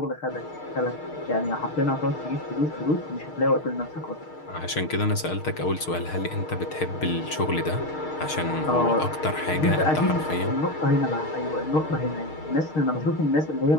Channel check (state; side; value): late; right; 6.5 ms